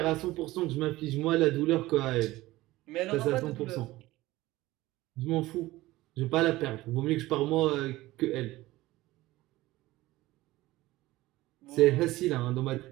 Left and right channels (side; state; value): left; quieter; 18.0 dB